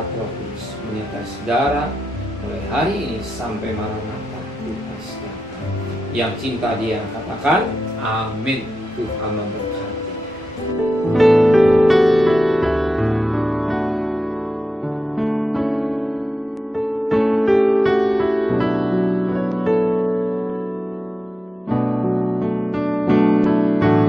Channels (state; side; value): normal; both; correlation 0.90